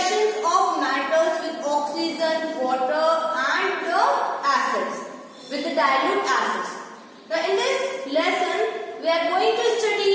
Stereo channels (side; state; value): both; identical; correlation 1.00